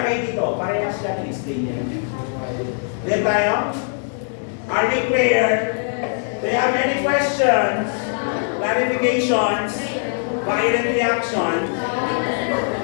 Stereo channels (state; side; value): silent; right; 65 dB below the other